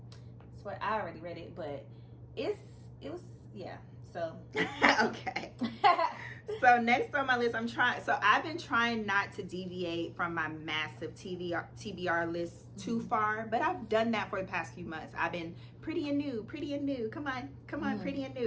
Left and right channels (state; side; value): identical; both; correlation 1.00